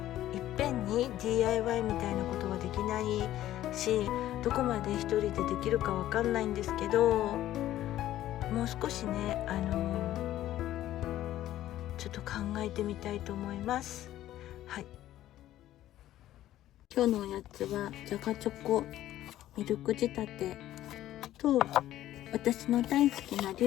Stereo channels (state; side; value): quieter; right; 13.5 dB